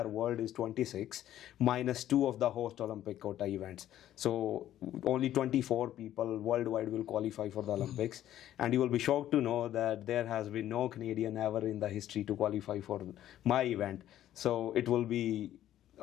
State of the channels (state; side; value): quieter; right; 12.3 dB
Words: world is 26 minus 2 of the host Olympic quota events. So only 24 people worldwide will qualify for the Olympics. And you will be shocked to know that there has been no Canadian ever in the history to qualify for my event. So it will be